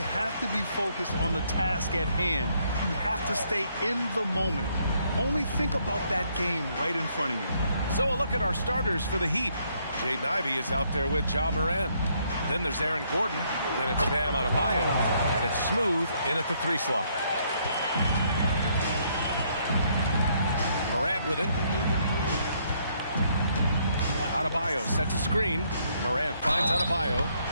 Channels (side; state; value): both; inverted; correlation -0.70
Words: have to be focused on the task at hand. You have to stay in the moment. Only think about that game right in front of you. So a look at our starters for the Heat. Jaden Ivey is out there with Ja Morant. Then there's Aaron Gordon. Then it's Bam Adebayo. And it's Smooth in at the 3 slot. Morant with it. Adebayo sets a screen. Morant finds Adebayo.